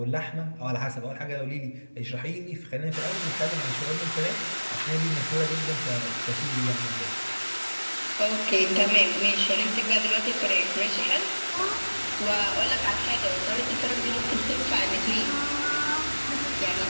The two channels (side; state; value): both; inverted; correlation -1.00